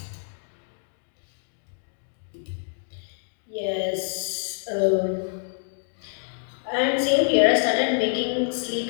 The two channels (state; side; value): silent; right; digital silence